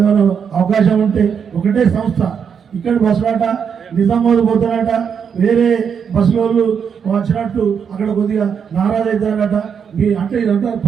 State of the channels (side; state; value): left; quieter; 7.1 dB